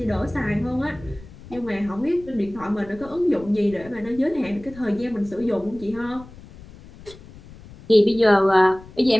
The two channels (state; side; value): noise; left; rumble, 19 dB below the sound